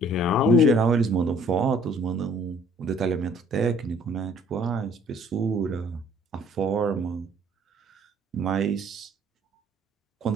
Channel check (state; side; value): normal; both; correlation 0.58